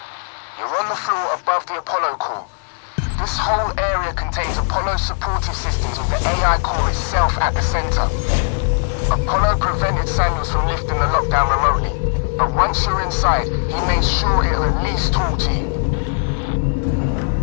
You're on the floor above the Apollo core. This whole area contains Apollo supportive systems with the AI core itself at the center. Apollo prevented Samuels from lifting the lockdown remotely, but once you're inside, he made sure it'll at least talk to you.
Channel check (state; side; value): silent; right; 55 dB below the other